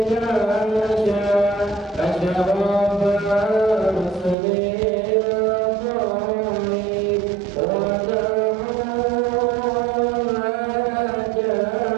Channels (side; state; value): left; drops out; at 4.4 s